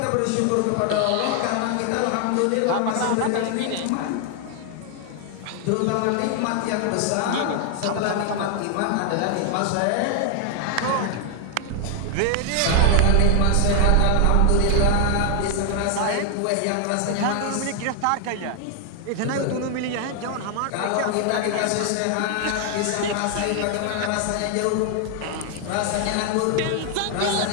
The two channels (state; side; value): different; both; correlation 0.00